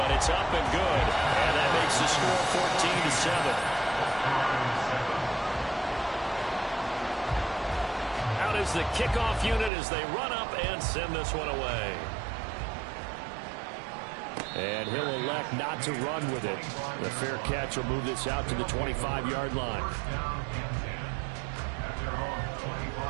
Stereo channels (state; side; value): drops out; left; at 9.7 s